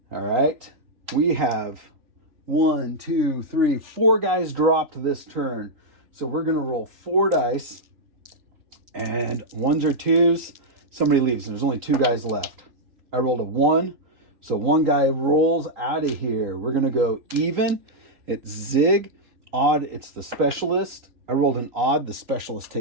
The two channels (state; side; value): late; left; 3.8 ms